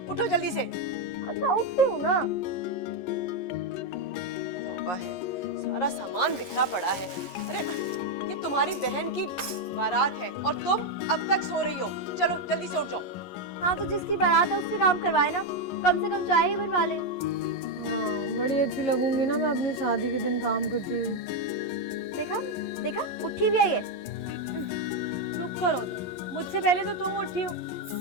उठो जल्दी से। अच्छा उठती हूँ ना। तौबा है, सारा सामान बिखरा पड़ा है। अरे ये तुम्हारी बहन की बारात है और तुम अब तक सो रही हो। चलो जल्दी से उठ जाओ। हाँ तो जिसकी बारात है उससे काम करवाए ना, कम से कम चाय ही बनवा ले। हाँ, बड़ी अच्छी लगूंगी ना मैं अपनी शादी के दिन काम करती हुई। देखा देखा, उठी भी आई है। चुप करो तुम, मुझसे पहले तो तुम उठी हो।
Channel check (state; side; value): late; right; 11 ms